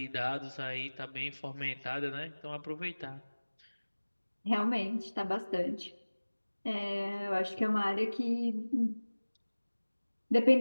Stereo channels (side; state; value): both; inverted; correlation -1.00